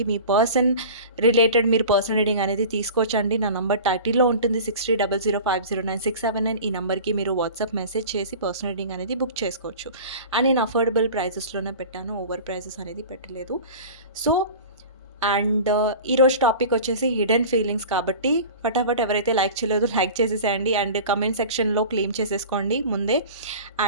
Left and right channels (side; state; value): both; inverted; correlation -0.37